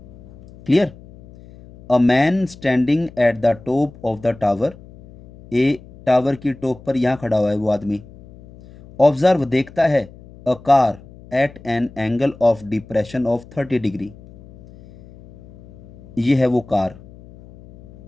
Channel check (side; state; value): left; noise; hum, 21 dB below the sound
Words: Clear. A man standing at the top of the tower, A tower की टॉप पर यहां खड़ा हुआ है वो आदमी। ऑब्जर्व देखता है a car eight an angle of depression of 30 degree. ये है वो कार,